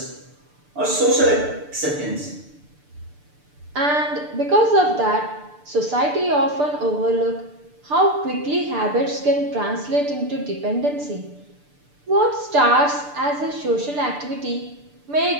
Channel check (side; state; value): left; late; 6.8 ms